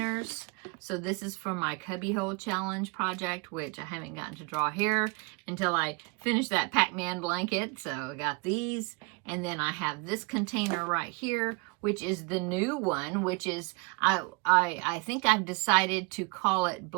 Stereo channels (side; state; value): left; quieter; 30.8 dB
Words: So this is for my Cubbyhole Challenge project, which I haven't gotten to draw here until I finish that Pac-Man blanket. So I got these, and then I have this container right here, which is the new one, which is, I think I've decided to call it